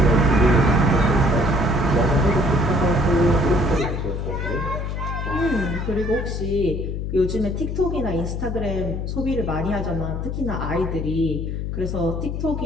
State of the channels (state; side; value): noise; left; hum, 3 dB below the sound